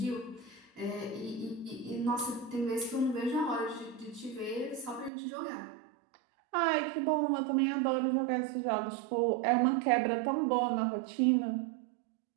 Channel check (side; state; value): left; drops out; at 5.1 s